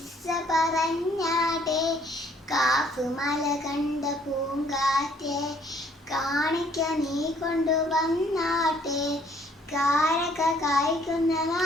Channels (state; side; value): normal; both; correlation 0.62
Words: പറഞ്ഞാട്ടെ. കാഫ് മല കണ്ട പൂങ്കാറ്റേ, കാണിക്ക നീ കൊണ്ടുവന്നാട്ടെ, കാരക കായ്ക്കുന്ന